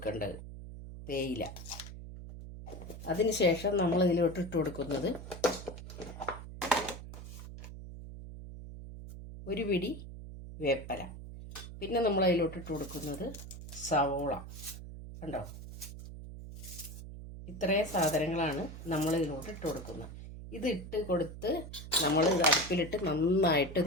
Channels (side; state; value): right; noise; hum, 12 dB below the sound